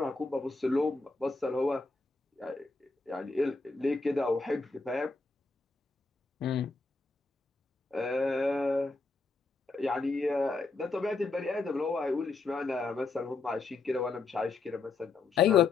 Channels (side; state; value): right; quieter; 3.9 dB